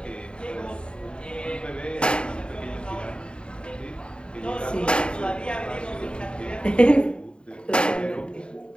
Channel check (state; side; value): late; right; 0.052 ms